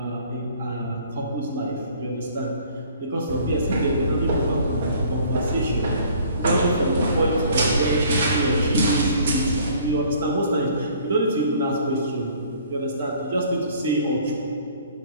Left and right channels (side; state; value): both; inverted; correlation -0.55